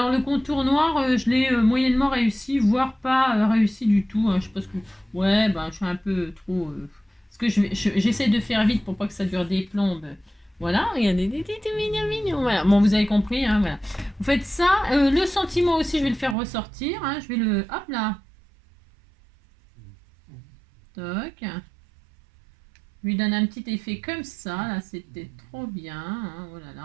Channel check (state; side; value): drops out; left; at 16.4 s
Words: le contour noir, je l'ai moyennement réussi, voire pas réussi du tout. Hein. Je pense que ouais, ben je suis un peu trop. Parce que j'essaie de faire vite pour pas que ça dure des plombes. Voilà, regardez, tout mignon, mignon. Voilà, bon, vous avez compris, hein, voilà. Vous faites ça. Le sentiment aussi, je vais le faire ressortir. Hein, je vais le... Hop là. Toc. Je lui donne un petit effet comme ça. Là, c'était trop bien. Hein, oh là là,